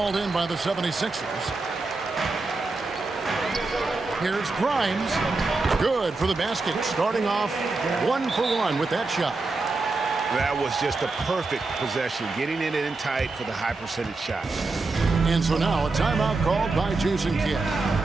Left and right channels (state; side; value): quieter; left; 3.6 dB